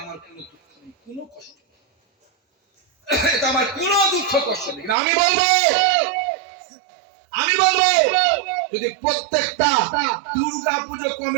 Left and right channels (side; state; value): left; drops out; at 5.0 s